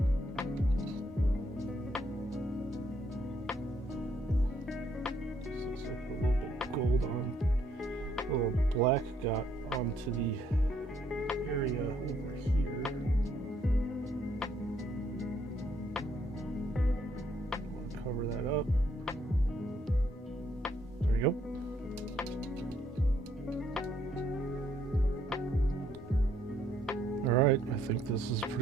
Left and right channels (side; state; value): both; normal; correlation 0.69